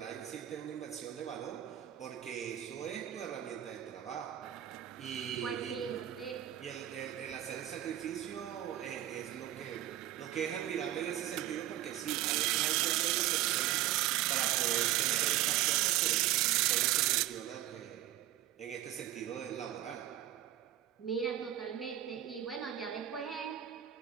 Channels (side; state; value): left; quieter; 13.3 dB